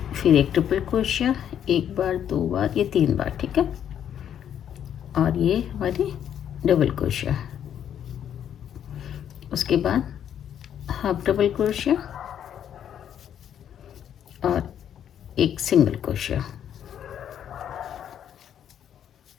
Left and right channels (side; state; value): right; quieter; 9.5 dB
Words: फिर एक ट्रिपल क्रोशिया 1 बार 2 बार ये 3 बार। ठीक है, और ये हमारी डबल क्रोशिया, उसके बाद हाफ डबल क्रोशिया और एक सिंगल क्रोशिया।